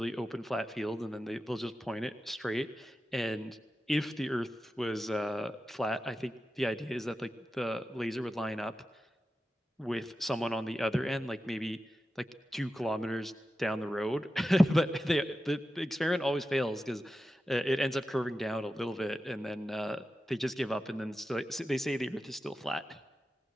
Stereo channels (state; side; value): normal; both; correlation 0.92